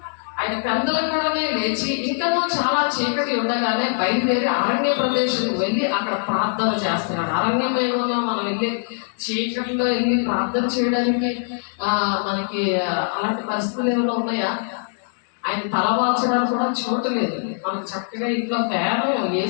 ఆయన పెద్దలు కూడా లేచి ఇంకా చాలా చీకటి ఉండగానే బయలుదేరి అరణ్య ప్రదేశం వెళ్ళి అక్కడ ప్రార్థన చేస్తున్నాడు. అరణ్యం ఏమన్నా మనం వెళ్ళి చీకటిలో వెళ్ళి ప్రార్థన చేయడానికి మనకి అలాంటి పరిస్థితులు ఏమైనా ఉన్నాయా? ఆయన తలవాల్చడానికి కూడా చోటు లేదు. మనకు చక్కగా ఇంట్లో ఫ్యాను,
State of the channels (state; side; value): silent; right; digital silence